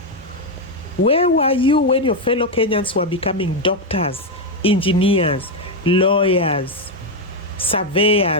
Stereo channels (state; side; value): normal; both; correlation 0.05